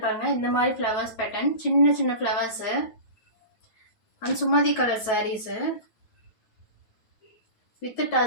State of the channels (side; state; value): right; late; 9.2 ms